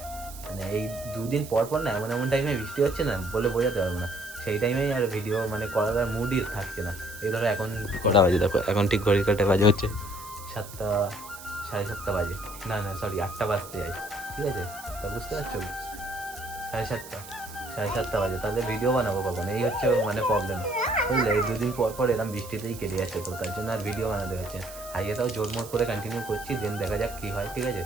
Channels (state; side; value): noise; right; hiss, 15 dB below the sound